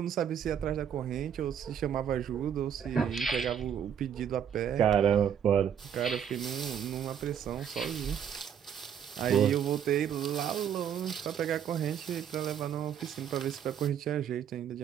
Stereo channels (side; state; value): left; quieter; 8.7 dB